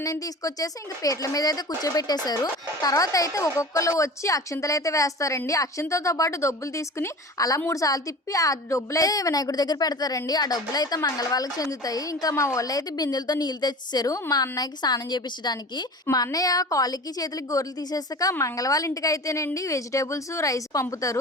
తీసుకొచ్చేసి ఇంక పీటల మీద అయితే కూర్చోబెట్టేశారు. తర్వాత అయితే ఒక్కొక్కరు వచ్చి అక్షింతలు అయితే వేస్తారండి. అక్షింతలతో పాటు డబ్బులు తీసుకుని అలా 3 సార్లు తిప్పి ఆ డబ్బులు అయితే వినాయకుడి దగ్గర పెడతారండి. ఆ డబ్బులు అయితే మంగళవాళ్ళకి చెందుతాయి. ఇంకా మా వాళ్ళు అయితే బిందెలతో నీళ్ళు తెచ్చేసారు మా అన్నయ్యకి స్నానం చేపించడానికి. మా అన్నయ్య కాళ్ళకి చేతులకి గోర్లు తీసేసాక మంగళవాళ్ళ ఇంటికి అయితేనండి వెజిటేబుల్స్ రైస్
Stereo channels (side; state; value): both; normal; correlation 0.36